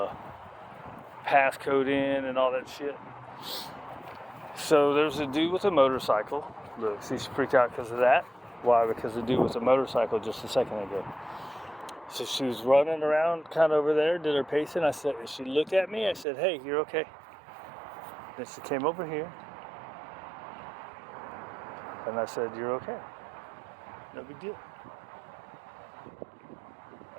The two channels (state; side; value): drops out; left; at 16.2 s